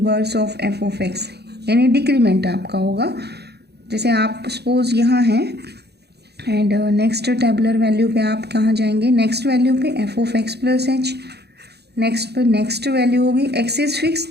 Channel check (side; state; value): left; late; 0.48 ms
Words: of f of x, यानी डिक्रीमेंट आपका होगा. जैसे आप सपोज यहाँ हैं एंड नेक्स्ट टेबुलर वैल्यू पे आप कहाँ जाएंगे, नेक्स्ट वैल्यू पे F of x plus H. Next पर नेक्स्ट वैल्यू होगी, एक्स इज फिक्स